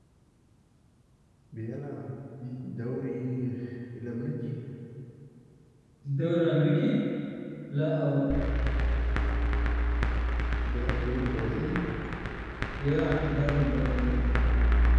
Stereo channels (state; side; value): identical; both; correlation 1.00